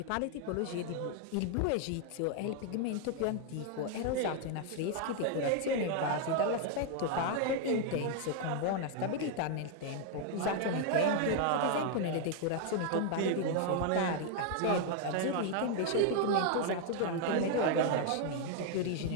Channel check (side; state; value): both; different; correlation 0.00